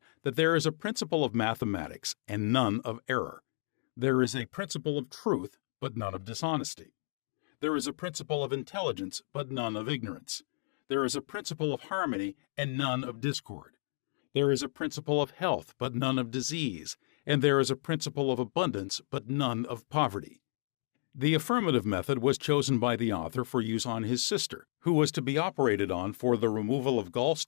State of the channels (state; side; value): silent; right; digital silence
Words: that there is a principle of mathematics and none of error. There is a principle of truth, but none of dishonesty. There is a principle of intelligence, but none of ignorance. There is a principle of harmony and none of discord. There is a principle of health, but none of disease, and there is a principle of abundance but none of poverty. The affirmative method was chosen by the author for use on his sister, who was to be operated on for the removal of